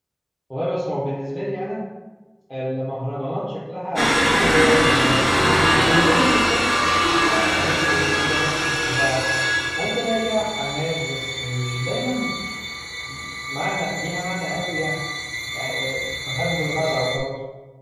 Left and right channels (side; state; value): both; identical; correlation 1.00